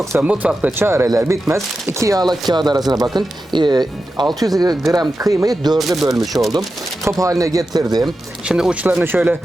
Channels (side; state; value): both; normal; correlation 0.91